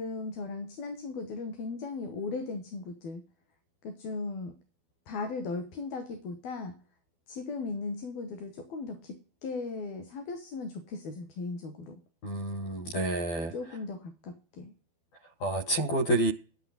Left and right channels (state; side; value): late; right; 12 ms